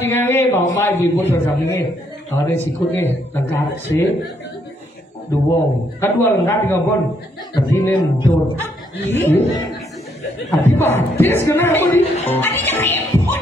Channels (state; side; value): normal; both; correlation 0.72